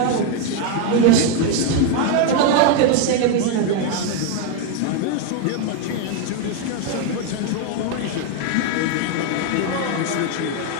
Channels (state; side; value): different; both; correlation 0.01